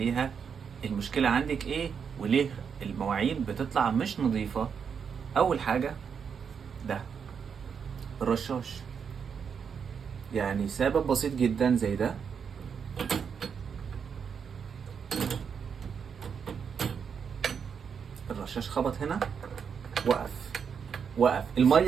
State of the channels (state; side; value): quieter; left; 6.8 dB